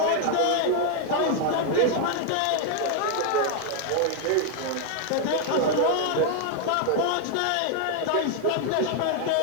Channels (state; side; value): different; both; correlation 0.00